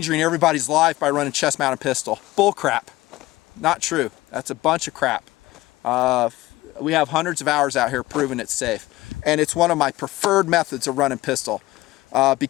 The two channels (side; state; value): right; quieter; 18.2 dB